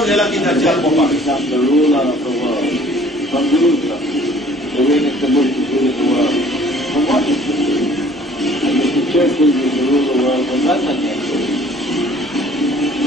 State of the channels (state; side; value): normal; both; correlation 0.54